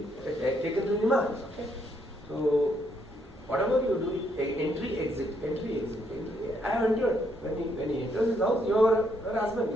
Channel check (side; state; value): both; normal; correlation 0.73